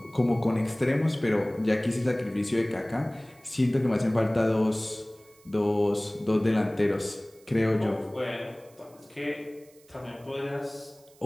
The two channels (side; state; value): right; noise; hiss, 28 dB below the sound